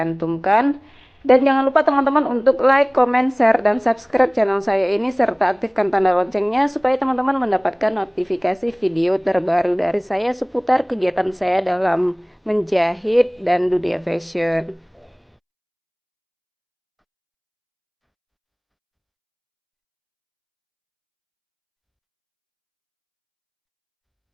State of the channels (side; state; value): both; identical; correlation 1.00